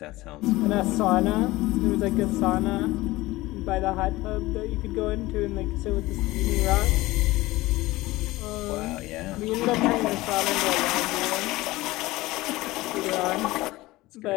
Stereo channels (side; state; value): right; quieter; 19.1 dB